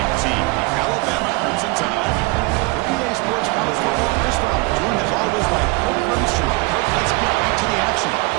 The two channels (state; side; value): quieter; left; 25.1 dB